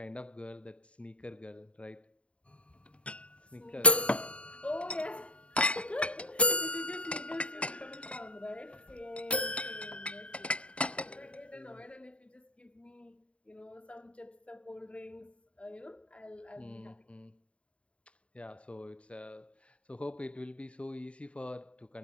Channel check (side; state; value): right; late; 0.061 ms